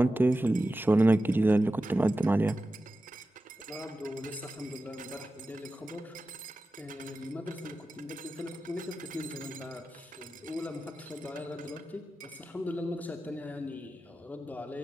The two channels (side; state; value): both; normal; correlation 0.93